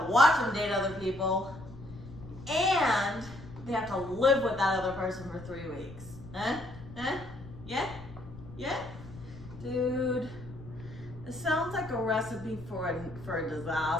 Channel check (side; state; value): left; noise; rumble, 16 dB below the sound